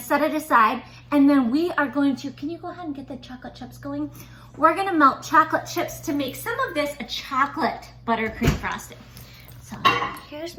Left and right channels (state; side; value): identical; both; correlation 1.00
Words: it aside. And then we are going to, can you go ahead and get the chocolate chips going? We're gonna melt chocolate chips to make some of this a chocolate buttercream frosting. So here's